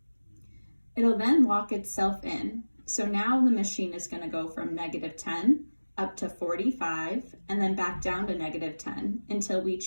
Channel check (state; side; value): inverted; both; correlation -1.00